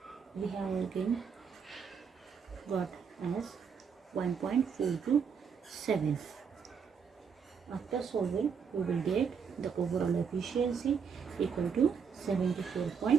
we have again got as 1.427. After solving, we will get the overall efficiency equal to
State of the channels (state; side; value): quieter; left; 6.5 dB